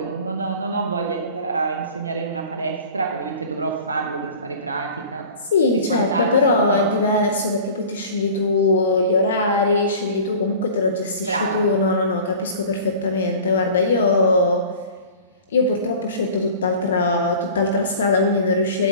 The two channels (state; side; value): inverted; both; correlation -0.41